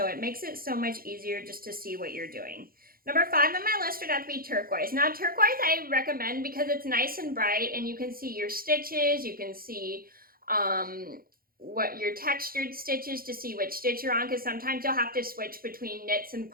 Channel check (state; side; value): late; left; 0.42 ms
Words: it makes it so much easier just to see what you're doing. Number five on my list would have to be turquoise. Now, turquoise I recommend because it's nice and bright, and you can see your stitches, you can see what your textured stitches to see which stitch you're on, because sometimes you'll have to switch between knits and